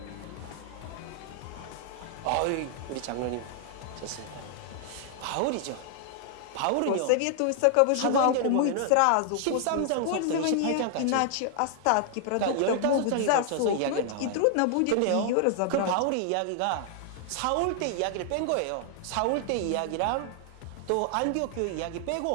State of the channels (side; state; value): both; different; correlation 0.00